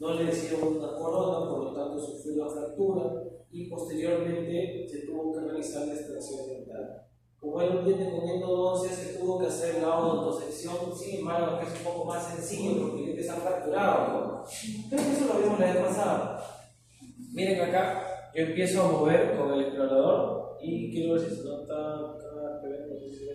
le hicieron una corona, por lo tanto sufrió una fractura y posteriormente se tuvo que realizar la extracción dental. Como era un diente con endodoncia, se tuvo que hacer la autosección, sin embargo, que es un poco más sencillo porque el diente está fracturado, ¿no? Creo que eso lo vimos la vez pasada. Miren acá, yo empiezo a mover con el explorador Y quiero ver si se nota acá, no sé si en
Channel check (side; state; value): both; identical; correlation 1.00